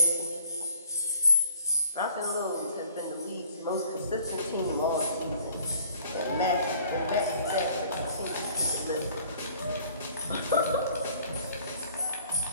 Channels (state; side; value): inverted; both; correlation -0.54